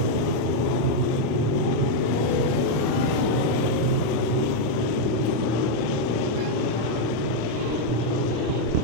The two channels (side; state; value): left; late; 1.1 ms